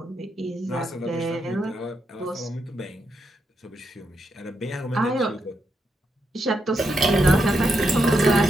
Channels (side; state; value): both; normal; correlation 0.82